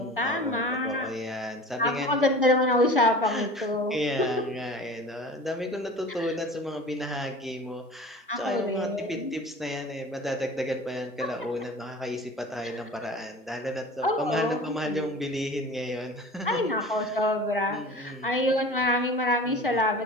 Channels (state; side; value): normal; both; correlation 0.39